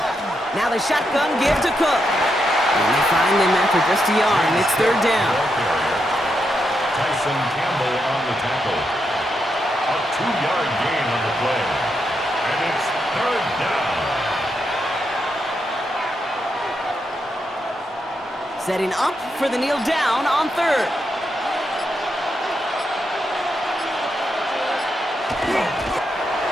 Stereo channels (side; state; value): both; normal; correlation 0.83